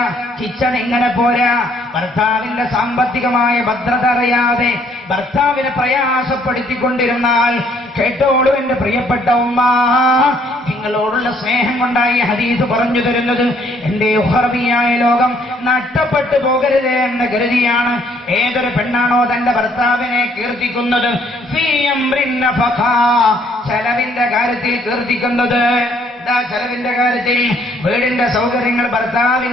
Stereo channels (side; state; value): both; normal; correlation 0.65